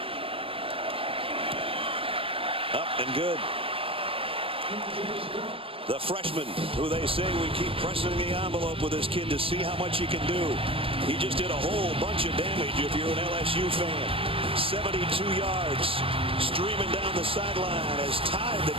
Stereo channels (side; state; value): left; late; 0.26 ms